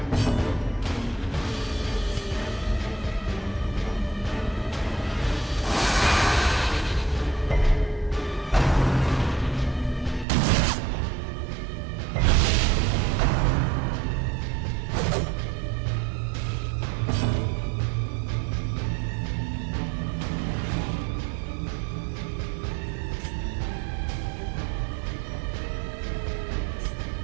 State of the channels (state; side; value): drops out; left; at 10.2 s